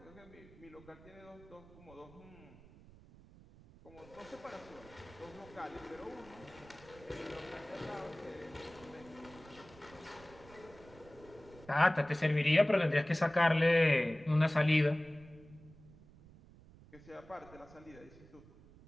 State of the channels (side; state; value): right; noise; rumble, 22 dB below the sound